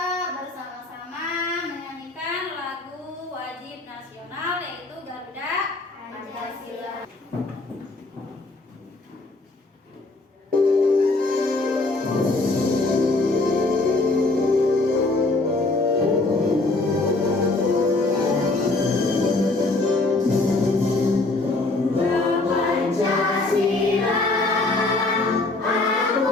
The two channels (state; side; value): quieter; right; 3.2 dB